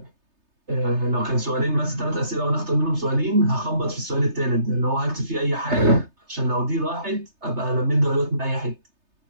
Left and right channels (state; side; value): late; left; 3.3 ms